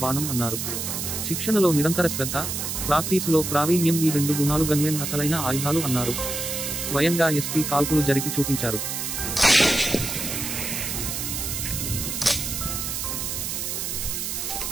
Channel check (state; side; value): noise; right; hiss, 3 dB below the sound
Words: బాణం అన్నారు. శిక్షణలో నిరంతర శ్రద్ధ, ప్రాక్టీసులో ప్రావీణ్యం ఈ 2 గుణాలు గన్‌మెన్ అసలైన ఆయుధాలు అన్నారు. స్వయంగా ఎస్పీ కాల్పులు జరిపి చూపించారు.